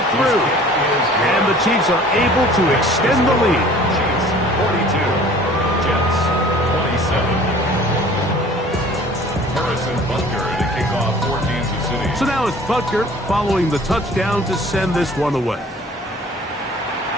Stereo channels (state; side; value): normal; both; correlation 0.49